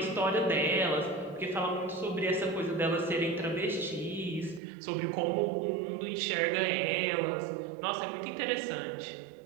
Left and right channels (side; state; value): left; drops out; at 4.6 s